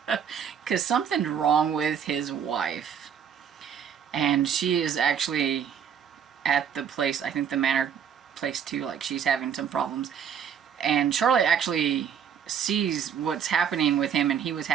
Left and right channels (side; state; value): left; quieter; 8.0 dB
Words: Because something's wrong with his wife. and she is actually at the place, I think the manor place too, like she's having some problems. And Charlotte actually sees what's happening with him, and he was